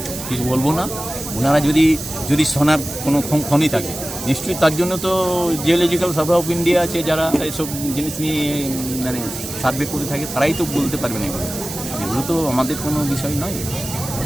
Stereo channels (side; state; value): right; noise; hiss, 9 dB below the sound